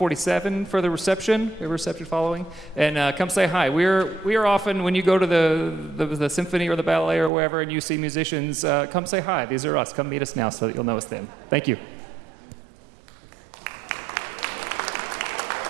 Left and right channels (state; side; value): drops out; left; at 7.3 s